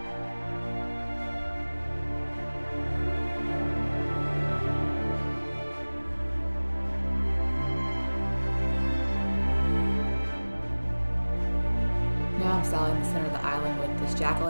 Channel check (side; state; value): both; inverted; correlation -1.00